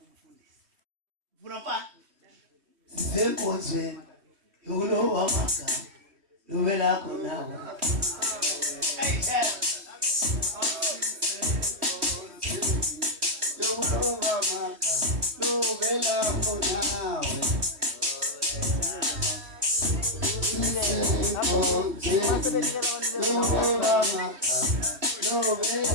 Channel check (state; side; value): late; left; 3.1 ms